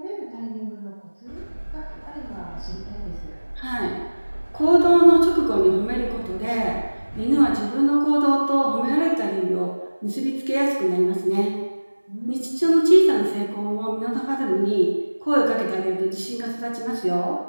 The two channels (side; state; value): both; inverted; correlation -1.00